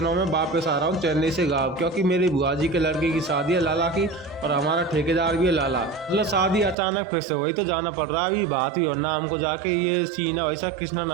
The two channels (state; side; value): drops out; left; at 6.8 s